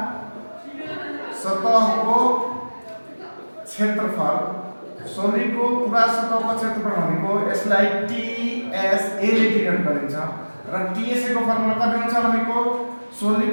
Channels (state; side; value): inverted; both; correlation -1.00